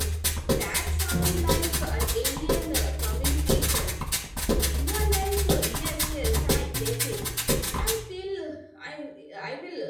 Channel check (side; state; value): both; identical; correlation 1.00